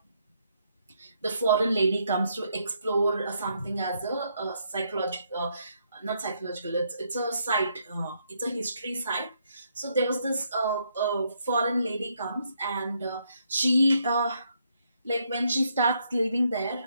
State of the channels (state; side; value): inverted; both; correlation -0.74